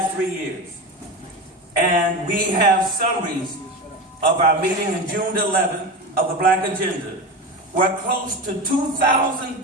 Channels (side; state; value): both; normal; correlation 0.24